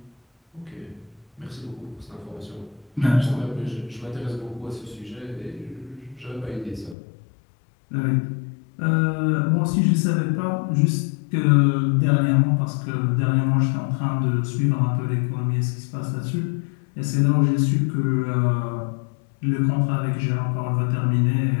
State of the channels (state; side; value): drops out; right; at 7.0 s